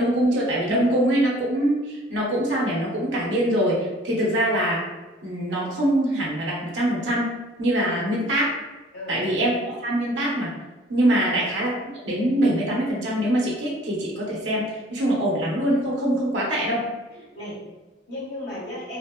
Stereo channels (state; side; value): normal; both; correlation 0.52